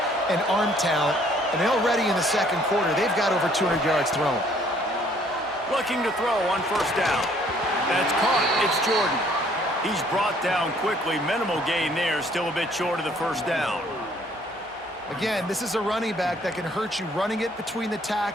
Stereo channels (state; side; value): normal; both; correlation 0.61